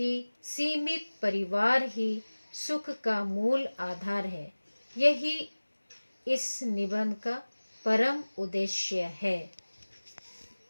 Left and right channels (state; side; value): inverted; both; correlation -1.00